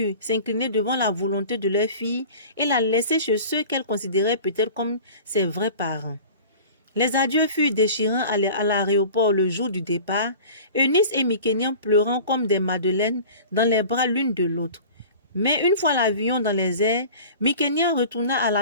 s'incliner devant la volonté de leur fille et la laisser chez ceux qu'elle considérait peut-être comme ses vrais parents. Les adieux furent déchirants à l'aéroport le jour du départ, Eunice et Mikenya pleurant comme des madeleines dans les bras l'une de l'autre. Mais une fois l'avion dans les airs, Mikenya retourna à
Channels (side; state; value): both; inverted; correlation -0.40